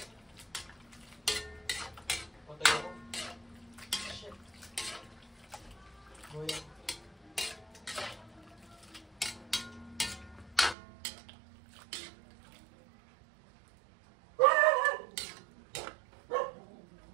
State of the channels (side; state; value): left; drops out; at 10.8 s